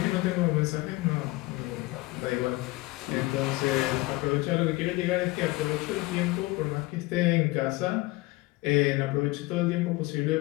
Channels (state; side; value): quieter; right; 21.2 dB